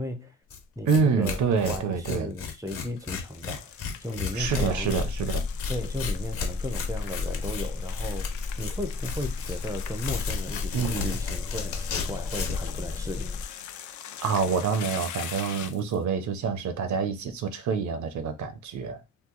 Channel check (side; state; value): both; normal; correlation 0.37